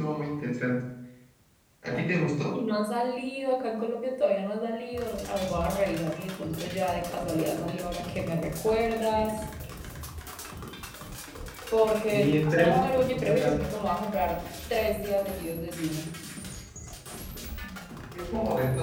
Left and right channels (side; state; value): both; identical; correlation 1.00